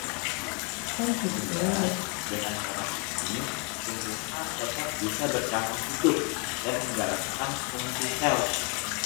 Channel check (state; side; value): quieter; right; 33.5 dB